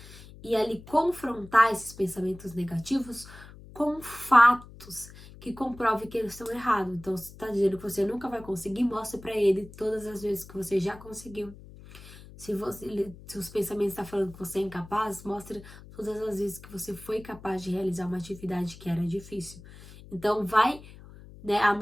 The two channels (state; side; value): noise; left; hum, 18 dB below the sound